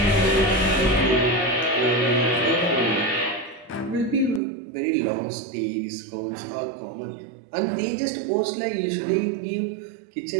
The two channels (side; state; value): left; drops out; at 4.4 s